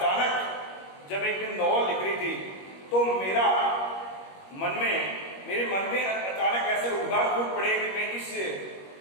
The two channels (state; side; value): late; right; 21 ms